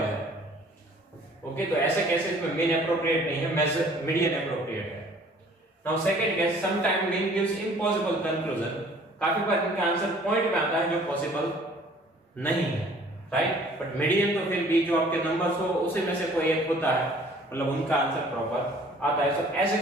ओके, तो ऐसे केसेस में मीन एप्रोप्रिएट नहीं है, मेजर मीडियन एप्रोप्रिएट है। Now second case, some time mean gives impossible conclusion, काफी बार इनका आंसर पॉइंट में आता है जो पॉसिबल नहीं है, राइट। बट मीडियन तो फिर भी जो आपके नंबर्स हो उसी में से कोई एक होता है, मतलब उनका आंसर प्रॉपर आता है। तो ऐसे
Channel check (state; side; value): normal; both; correlation 0.54